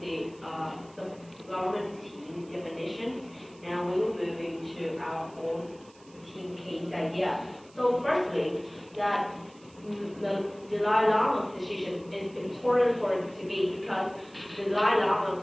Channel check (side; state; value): right; noise; hiss, 27 dB below the sound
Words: government team definitions. Now we will move into our own team case idea. So firstly, that the Dalai Lama's decision is important for Tibet because the Dalai